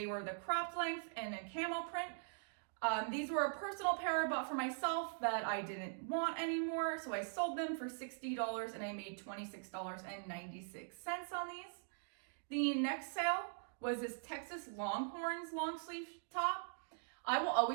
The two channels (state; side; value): silent; left; digital silence